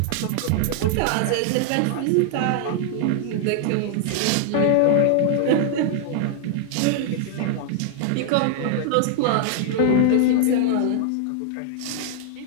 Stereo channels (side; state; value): both; different; correlation -0.01